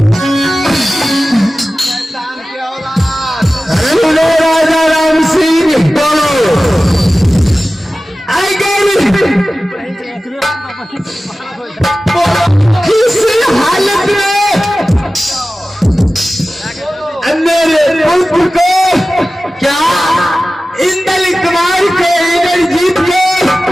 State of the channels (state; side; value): normal; both; correlation 0.96